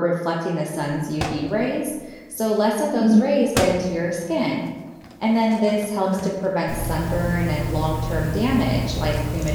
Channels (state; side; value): identical; both; correlation 1.00